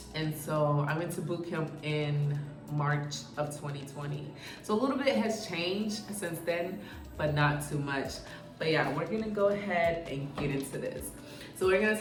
And so I went to boot camp in March of 2020. So a little bit has changed since then, but not too much. But yeah, we're gonna go ahead and get into this. So we're gonna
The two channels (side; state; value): both; identical; correlation 1.00